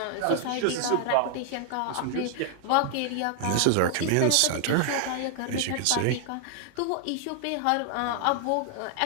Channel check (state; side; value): different; both; correlation 0.00